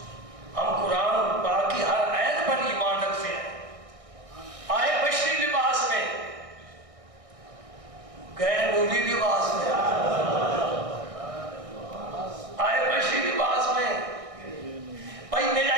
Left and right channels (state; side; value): late; left; 1.6 ms